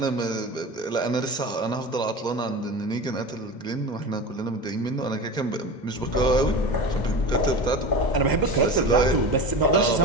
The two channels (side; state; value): right; late; 2.1 ms